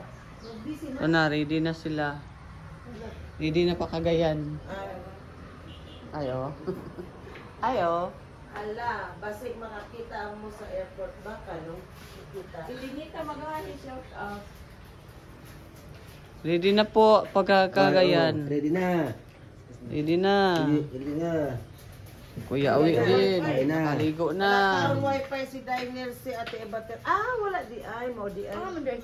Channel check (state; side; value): identical; both; correlation 1.00